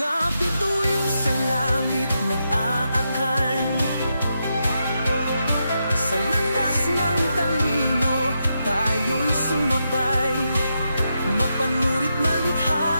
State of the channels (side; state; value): both; inverted; correlation -0.84